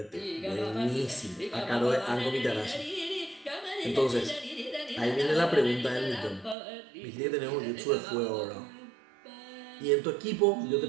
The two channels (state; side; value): drops out; left; at 6.6 s